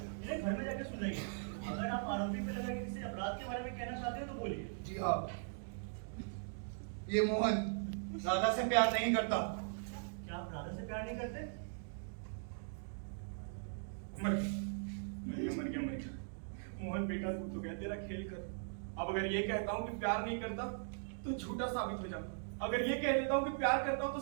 इन्हें घर में जाके सुनाइए। अगर आप आरोपी पे लगा के किसी अपराध के बारे में कहना चाहते हो तो बोलिए। जी हाँ, ये मोहन राधा से प्यार नहीं करता। क्या आप राधा से प्यार नहीं करते? मर गया मर गया मर गया। मोहन बेटा तू तो गया तेरा खेल कर। अब अगर ये कहता हूँ कि प्यार नहीं करता तो झूठा साबित हो जाऊंगा। अगर ये कह देता हूँ कि प्यार करता हूँ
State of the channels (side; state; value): left; silent; digital silence